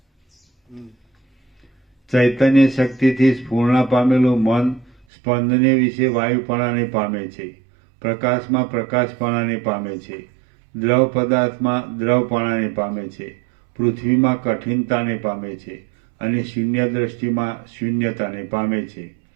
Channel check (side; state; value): left; drops out; at 5.1 s